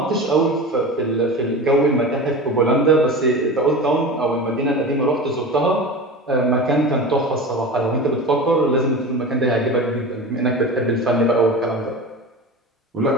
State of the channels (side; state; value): both; normal; correlation 0.30